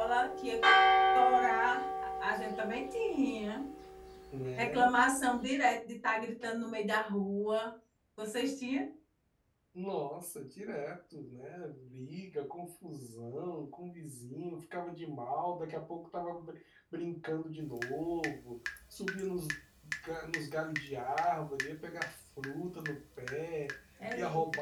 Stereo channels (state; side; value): identical; both; correlation 1.00